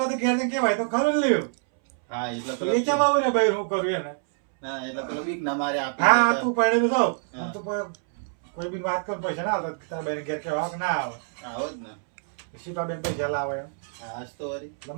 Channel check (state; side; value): silent; left; 61 dB below the other